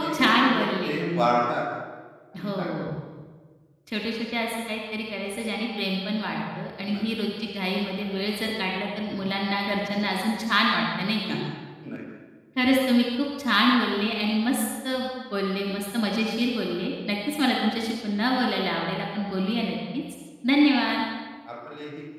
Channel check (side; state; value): both; identical; correlation 1.00